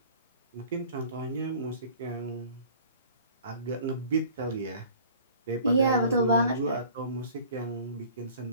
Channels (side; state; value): both; inverted; correlation -0.48